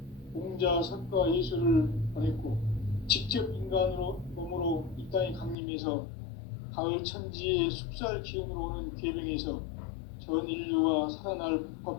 공자, 석가, 예수를 보냈고 직접 인간으로 몸으로 이 땅에 강림해서 가을 천지의 숲살 기운으로 오는 계명에서 전 인류와 살아날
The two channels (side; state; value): right; drops out; at 5.6 s